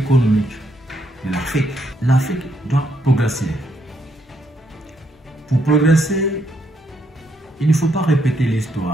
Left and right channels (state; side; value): normal; both; correlation 0.75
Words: de l'Afrique. L'Afrique doit progresser. Pour progresser, il ne faut pas répéter